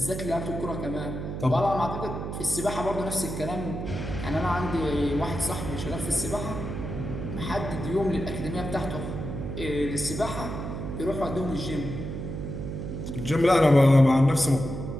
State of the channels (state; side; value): noise; right; hum, 6 dB below the sound